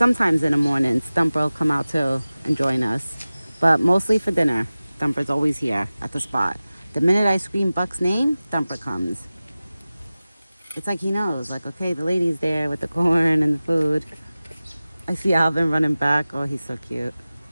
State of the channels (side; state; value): both; inverted; correlation -0.97